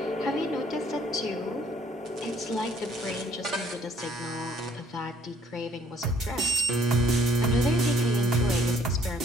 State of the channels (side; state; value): both; normal; correlation 0.61